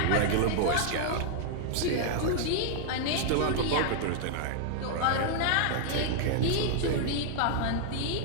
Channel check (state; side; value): different; both; correlation -0.01